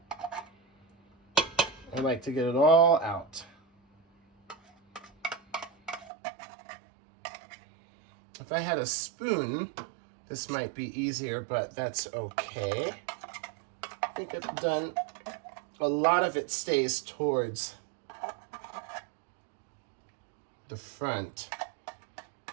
I like to get it all out. If I had a spoon, this might be easier, but that's okay. I think I've done, a lot of it stays towards the front,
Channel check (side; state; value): left; drops out; at 6.1 s